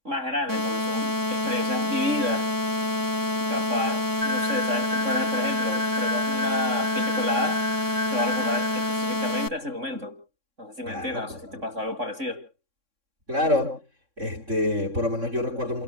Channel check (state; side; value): late; left; 3.6 ms